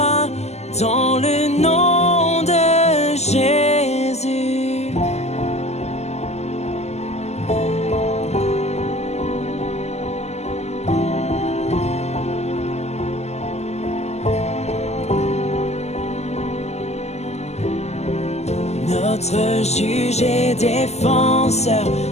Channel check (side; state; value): right; late; 0.32 ms